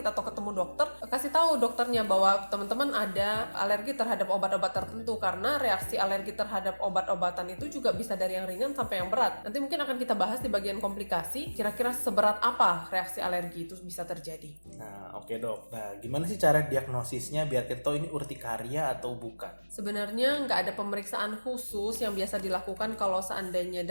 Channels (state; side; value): inverted; both; correlation -1.00